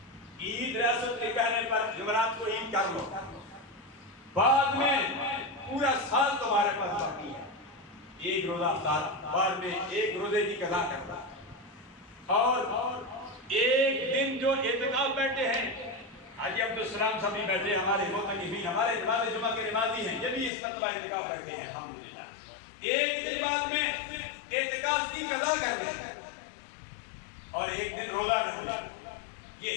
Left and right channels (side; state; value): right; drops out; at 20.5 s